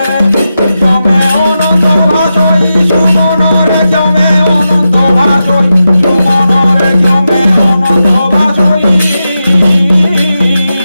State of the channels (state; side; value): inverted; both; correlation -0.90